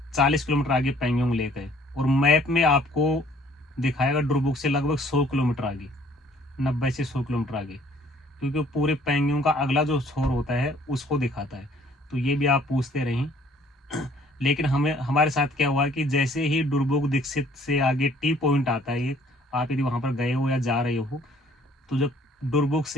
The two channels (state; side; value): normal; both; correlation 0.59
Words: 40 किलोमीटर आगे पेंगोंग ले गए, और मैप में आपको दिखाएगा डुरबुक से लगभग 100 किलोमीटर आगे, 90 से 100 किलोमीटर आगे, क्योंकि पूरे पेंगोंग का अगला जो छोर होता है उसको दिखाता है। तो ये भी आप पूछते रहें। लेकिन हमें हमारे साथ क्या हुआ कि जैसे ही डुरबुक दीक्षित से आगे टी पॉइंट आता है एक, आप यदि वहाँ पर गए हो या जा रहे हो, तो जब